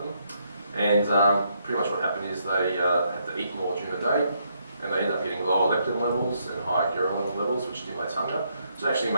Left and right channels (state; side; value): inverted; both; correlation -0.75